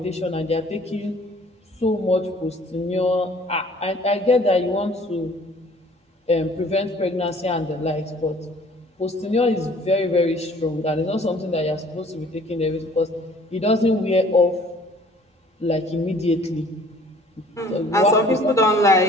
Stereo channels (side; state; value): both; normal; correlation 0.54